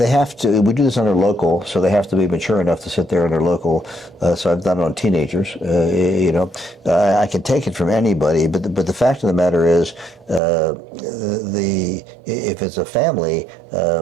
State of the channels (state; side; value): drops out; left; at 10.4 s